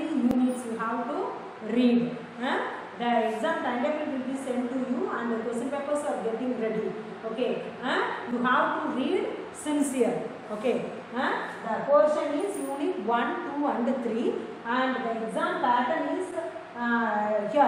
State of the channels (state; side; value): identical; both; correlation 1.00